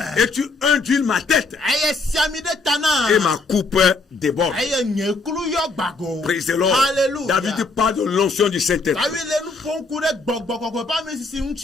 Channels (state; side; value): quieter; right; 3.6 dB